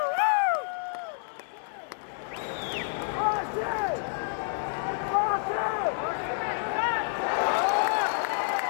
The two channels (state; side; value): silent; right; digital silence